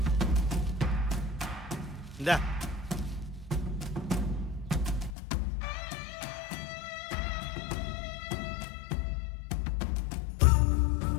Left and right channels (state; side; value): drops out; right; at 5.1 s